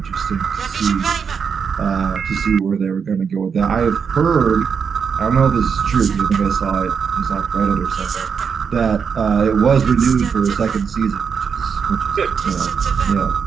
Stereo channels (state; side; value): quieter; left; 6.4 dB